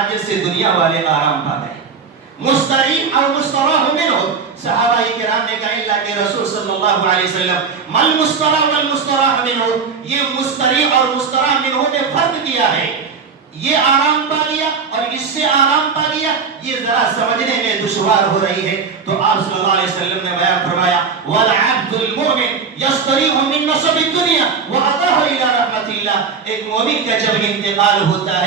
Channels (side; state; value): left; quieter; 5.6 dB